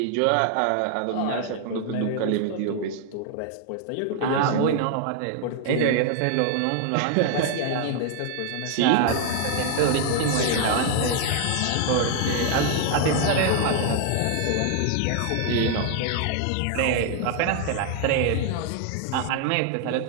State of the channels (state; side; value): different; both; correlation 0.00